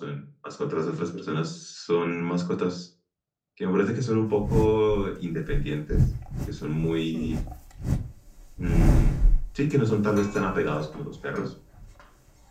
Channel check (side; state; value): both; identical; correlation 1.00